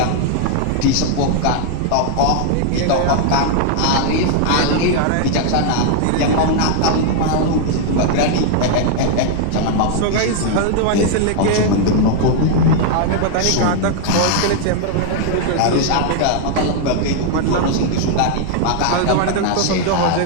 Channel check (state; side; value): different; both; correlation 0.00